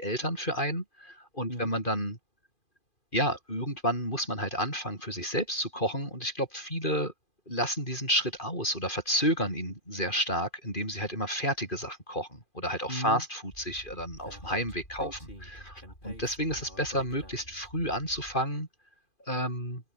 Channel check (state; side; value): late; right; 2.4 ms